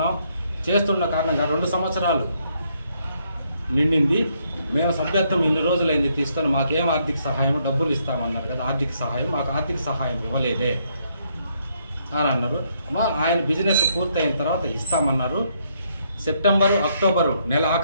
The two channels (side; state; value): both; inverted; correlation -0.73